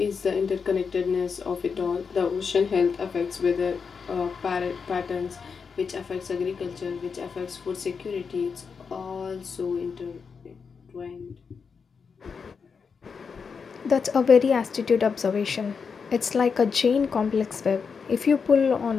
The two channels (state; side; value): quieter; right; 5.7 dB